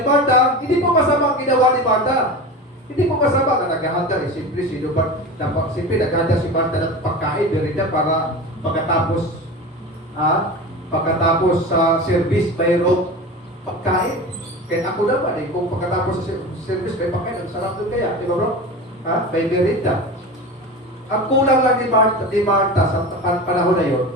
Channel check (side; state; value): both; normal; correlation 0.30